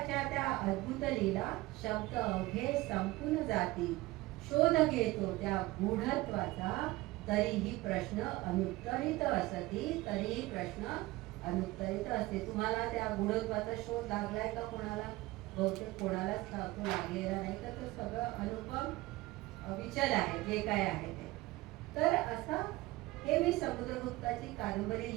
त्या अद्भुत लीला शब्द अवघे संपून जाती. शोध घेतो त्या गूढत्वाचा तरीही प्रश्न अनुत्तरित असती, तरीही प्रश्न अनुत्तरित असते. तुम्हाला त्या गूढत्वाचा शोध लागलाय का कोणाला? बहुतेक कोणालाच तो लागलेला नाही, तर तो सगळं अनुपम विचल आहे जे काय आहे ते. तर असं हे मी समुद्रगुप्ताची कादंबरी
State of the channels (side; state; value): left; quieter; 19.5 dB